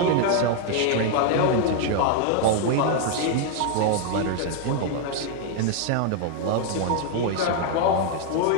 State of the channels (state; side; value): different; both; correlation 0.00